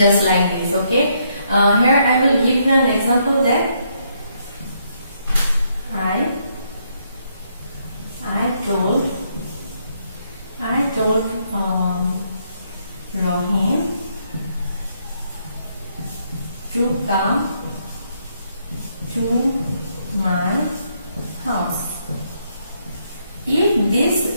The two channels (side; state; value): both; inverted; correlation -0.74